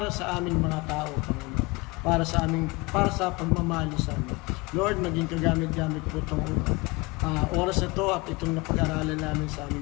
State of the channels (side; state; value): right; quieter; 25.1 dB